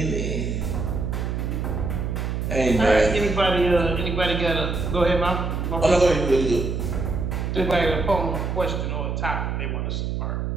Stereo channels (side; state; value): right; noise; hum, 2 dB below the sound